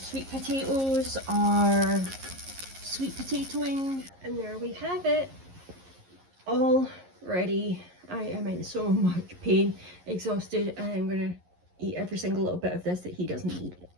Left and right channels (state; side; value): late; left; 11 ms